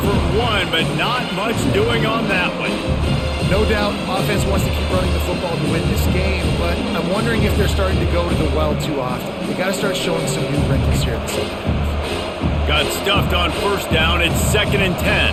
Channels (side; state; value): both; identical; correlation 1.00